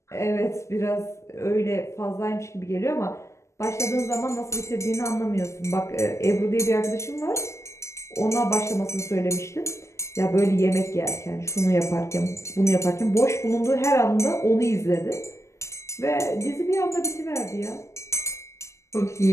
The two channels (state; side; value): late; right; 0.13 ms